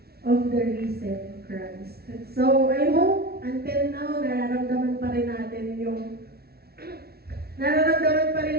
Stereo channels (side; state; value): left; late; 0.45 ms